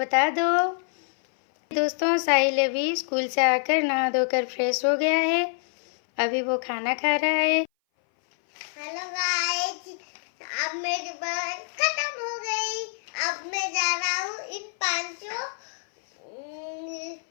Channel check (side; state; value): right; silent; 58 dB below the other